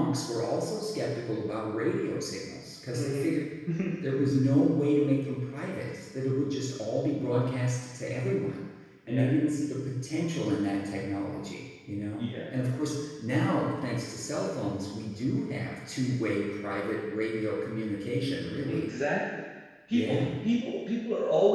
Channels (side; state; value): both; identical; correlation 1.00